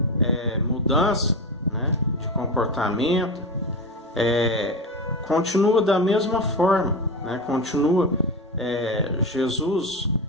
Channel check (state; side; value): normal; both; correlation 0.21